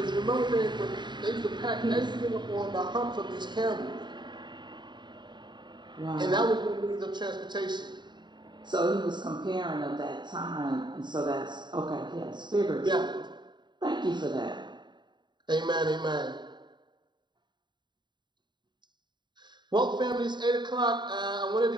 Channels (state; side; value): late; left; 0.22 ms